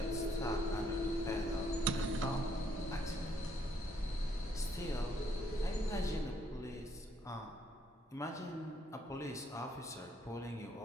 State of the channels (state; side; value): normal; both; correlation 0.70